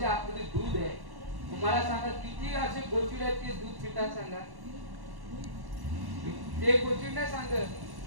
आतमध्ये दूध आहे. मला सांगा किती असे गोचिड आहेत ते दूध पितात सांगा. ते गोचिड नाही सांगत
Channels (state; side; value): late; left; 1.1 ms